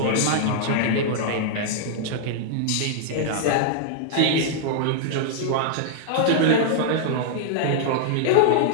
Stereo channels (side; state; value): both; different; correlation -0.01